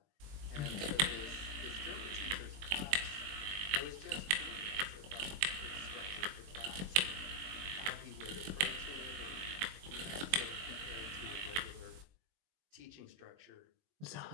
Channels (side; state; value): left; late; 21 ms